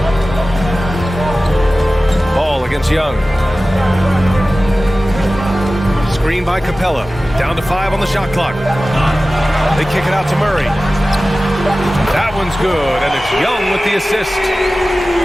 Ball against Young. Screen by Capella. Down to 5 on the shot clock. They kick it out to Murray. That one's good, and it's Young with the assist.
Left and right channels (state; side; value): normal; both; correlation 0.96